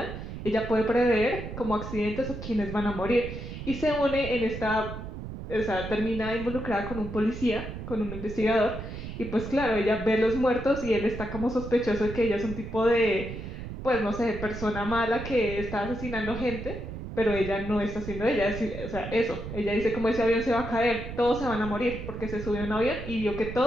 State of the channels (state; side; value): noise; right; rumble, 8 dB below the sound